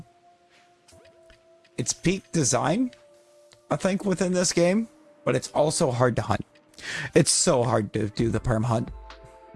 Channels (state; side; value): identical; both; correlation 1.00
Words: It's peak design, I think, within this game, but it's also hard to hunt. It's so hard to do the perm hunt.